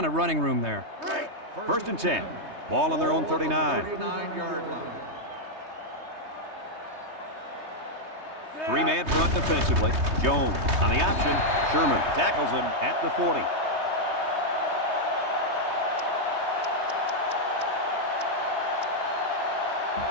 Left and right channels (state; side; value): late; left; 3.2 ms